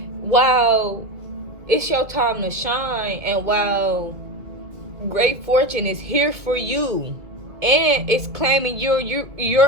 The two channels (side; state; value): left; late; 2.5 ms